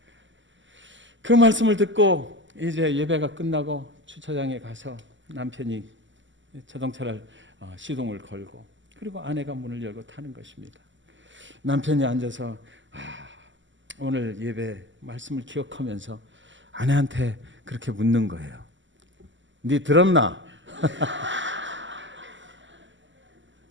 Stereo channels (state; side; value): late; left; 0.54 ms